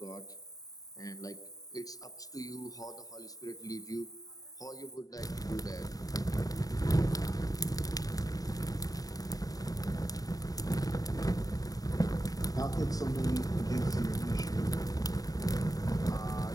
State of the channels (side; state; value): right; late; 0.18 ms